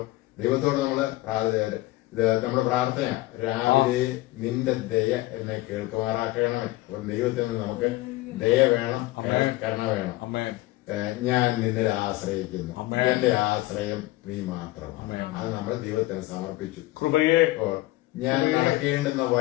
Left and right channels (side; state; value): right; quieter; 18.6 dB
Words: ദൈവത്തോട് നമ്മുടെ പ്രാർത്ഥന, രാവിലെ നിന്റെ ദയ എന്നെ കേൾക്കുമാറാക്കണമേ. അപ്പൊ ദൈവത്തിൽ നിന്ന് നമുക്ക് ദയ വേണം, കരുണ വേണം. ഞാൻ നിന്നിൽ ആശ്രയിക്കുന്നു. എന്റെ ആശ്രയം നീ മാത്രമാണ്. അത് നമ്മൾ ദൈവത്തിന് സമർപ്പിച്ചു. ഞാൻ നടക്കേണ്ടുന്ന